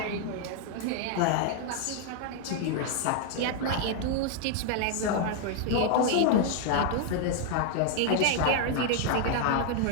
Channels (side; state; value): both; different; correlation 0.00